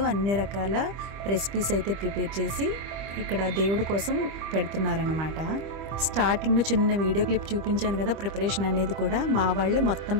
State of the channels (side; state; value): left; late; 25 ms